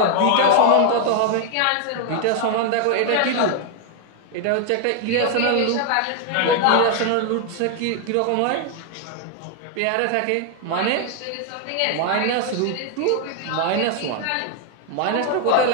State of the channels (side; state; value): both; different; correlation 0.00